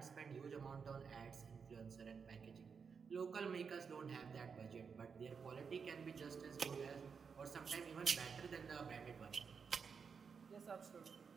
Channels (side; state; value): left; quieter; 5.9 dB